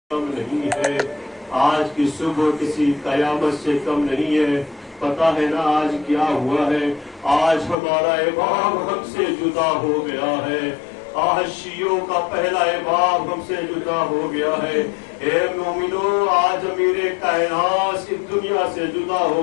کم نہیں ہے، آج کی صبح کسی قیامت سے کم نہیں ہے۔ پتا ہے نا آج کیا ہوا ہے؟ آج ہمارا امام ہم سے جدا ہو گیا ہے، آج شیعوں کا پہلا امام ہم سے جدا ہو گیا ہے۔ اے مومنو، آج امیر کائنات اس دنیا سے جدا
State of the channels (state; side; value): drops out; right; at 7.8 s